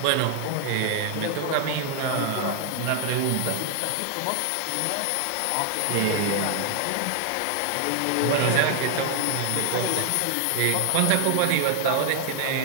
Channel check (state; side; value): different; both; correlation 0.00